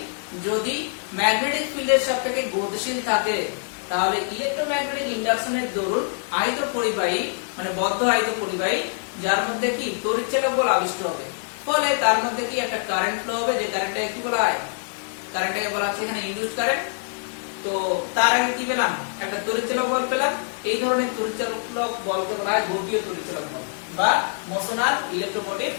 যদি ম্যাগনেটিক ফিল্ডের সাপেক্ষে গতিশীল থাকে তাহলে ইলেকট্রোম্যাগনেটিক ইন্ডাকশনের দরুন আয়ত পরিবাহী মানে বদ্ধ আয়ত পরিবাহী যার মধ্যে কি তড়িৎচালক বল আবিষ্ট হবে, ফলে তার মধ্যে কি একটা কারেন্ট ফ্লো হবে, যে কারেন্টটাকে কি বলা হয়, কারেন্টটাকে বলা হচ্ছে এখানে ইনডিউসড কারেন্ট। তো তার আগে কি পেলাম একটা তড়িৎচালক বল পেলাম, এই ধরনের তড়িৎচালক বলকে বলা হয় গতীয় তড়িৎচালক বল বা মোশনাল ইলেকট্রোমোটিভ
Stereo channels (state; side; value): silent; right; 56 dB below the other